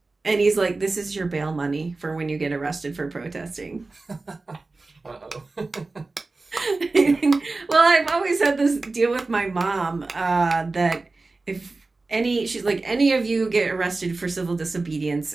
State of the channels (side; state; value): left; quieter; 3.5 dB